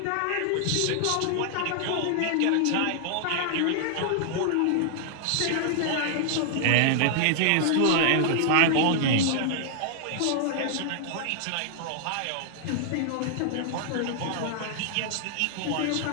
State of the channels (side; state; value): both; different; correlation 0.00